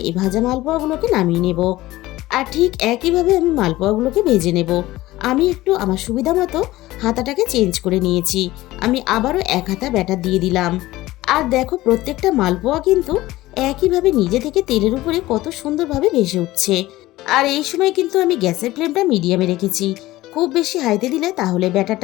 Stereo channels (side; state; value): right; quieter; 17.3 dB